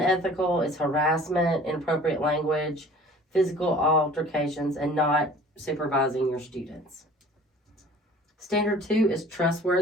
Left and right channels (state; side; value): normal; both; correlation 0.47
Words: is harassment, inappropriate language, physical altercations, and not supervising your students. Standard 2 is